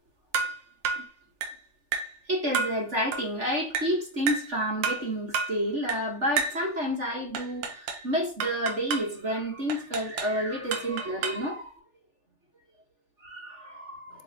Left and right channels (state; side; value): late; left; 3.4 ms